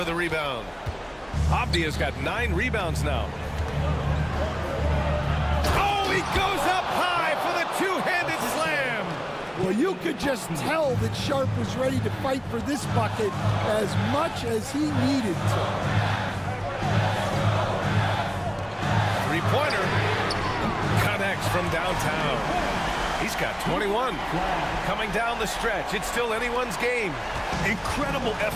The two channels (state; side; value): identical; both; correlation 1.00